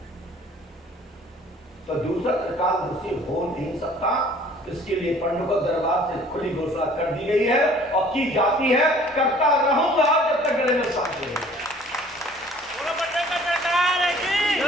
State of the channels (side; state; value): both; normal; correlation 0.53